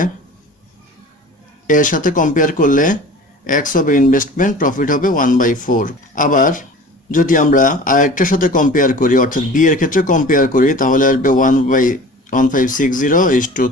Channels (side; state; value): both; normal; correlation 0.41